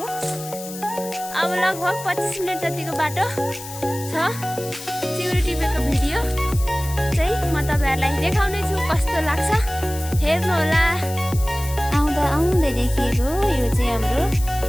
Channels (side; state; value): left; noise; hiss, 13 dB below the sound